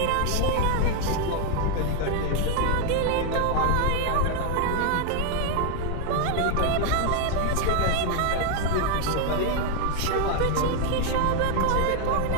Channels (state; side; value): different; both; correlation 0.00